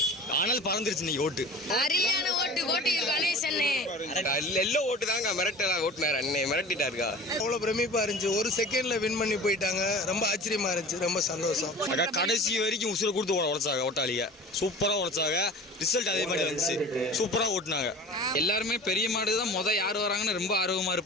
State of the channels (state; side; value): normal; both; correlation 0.39